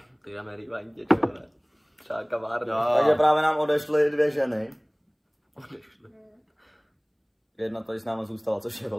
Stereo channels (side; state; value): both; identical; correlation 1.00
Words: Ty jdeme rývaň tě, čo, ne? Třeba kavárna. Takže právě nám odešly 2 ženy. Odešly. Jedna tady s náma zůstala, což je